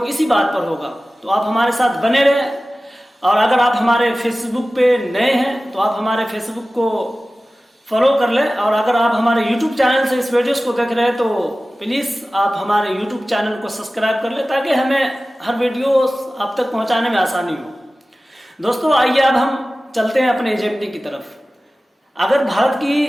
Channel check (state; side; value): normal; both; correlation 0.96